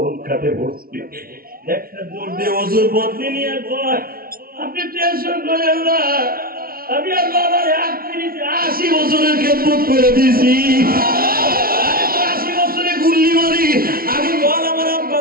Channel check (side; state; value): left; late; 0.43 ms